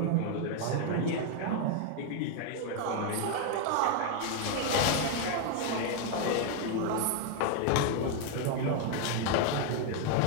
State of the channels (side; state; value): both; different; correlation 0.01